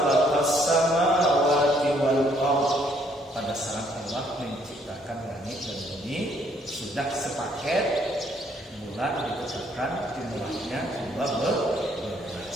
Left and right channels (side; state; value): both; normal; correlation 0.67